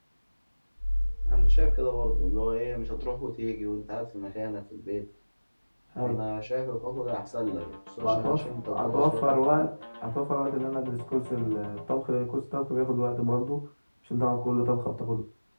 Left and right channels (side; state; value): both; inverted; correlation -1.00